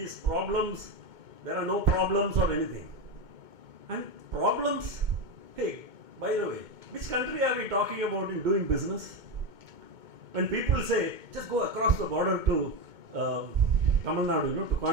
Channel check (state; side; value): late; left; 2.2 ms